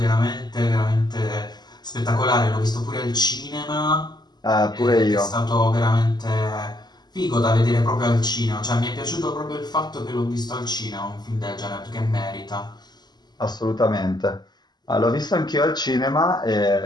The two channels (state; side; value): late; right; 0.20 ms